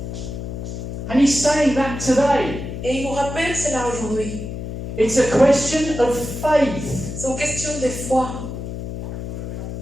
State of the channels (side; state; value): left; noise; hum, 7 dB below the sound